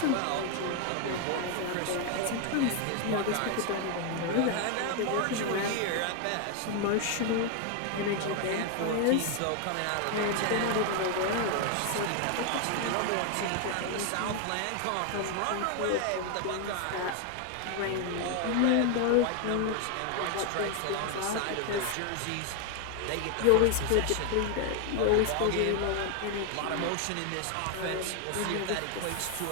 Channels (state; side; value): different; both; correlation 0.01